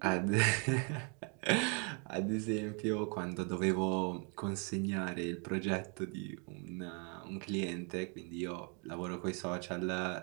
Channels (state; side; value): quieter; left; 37.2 dB